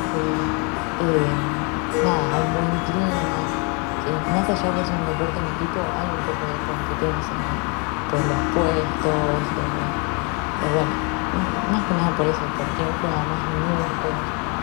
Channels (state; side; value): quieter; right; 33.7 dB